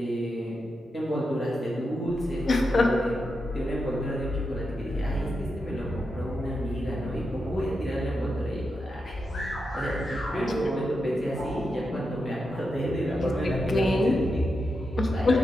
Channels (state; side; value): normal; both; correlation 0.87